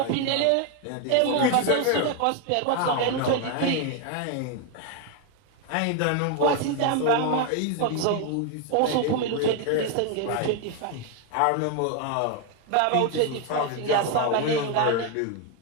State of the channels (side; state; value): both; different; correlation 0.01